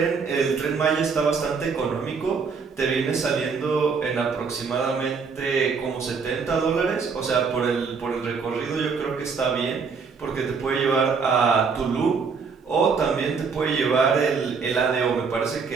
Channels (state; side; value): quieter; left; 5.3 dB